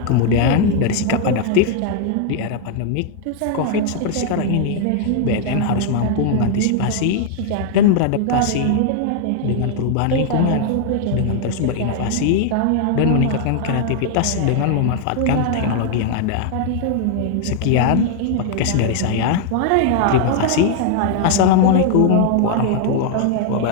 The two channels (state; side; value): different; both; correlation 0.00